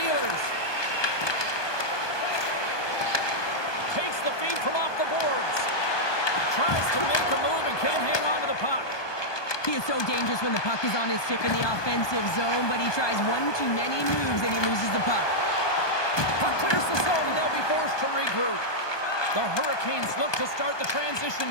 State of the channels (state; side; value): late; right; 1.2 ms